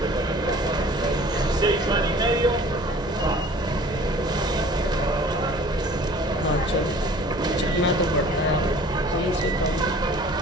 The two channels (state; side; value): normal; both; correlation 0.48